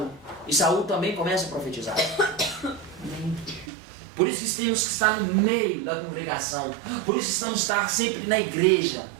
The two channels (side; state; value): left; drops out; at 3.7 s